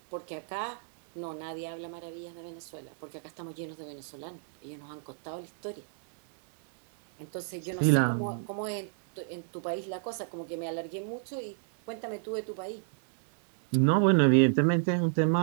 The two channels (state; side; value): silent; left; digital silence